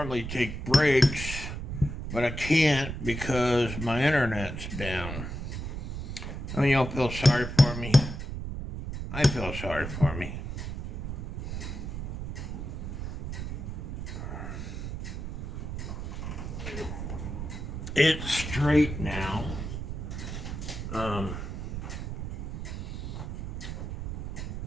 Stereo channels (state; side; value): noise; right; rumble, 5 dB below the sound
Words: take breaks, but I can't because my internet's down. I mean, y'all feel sorry for me? I feel sorry for me. It's straight now.